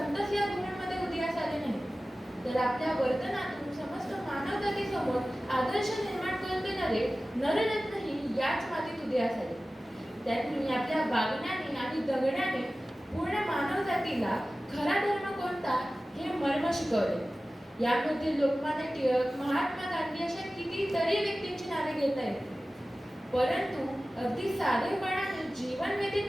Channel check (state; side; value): normal; both; correlation 0.96